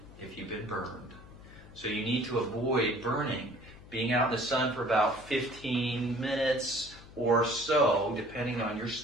if you've been burned. So you need to avoid burning. Being out in the sun for about 15 minutes or so, depending on your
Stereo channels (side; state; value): left; noise; hum, 19 dB below the sound